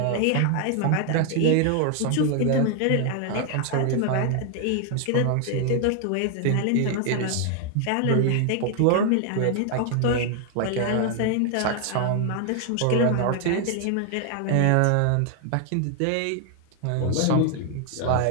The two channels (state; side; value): different; both; correlation 0.00